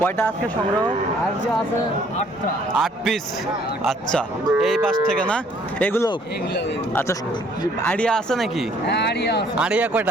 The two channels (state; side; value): normal; both; correlation 0.61